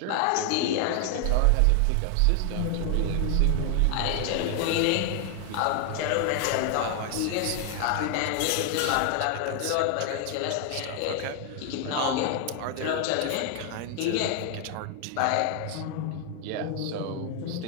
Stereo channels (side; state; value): both; different; correlation 0.00